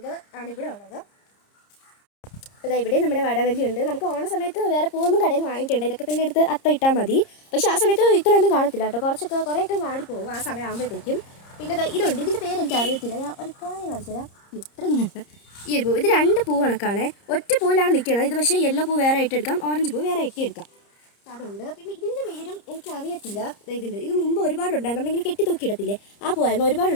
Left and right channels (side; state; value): right; late; 30 ms